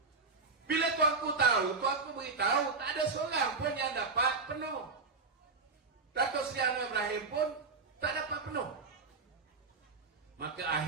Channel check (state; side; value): quieter; left; 4.2 dB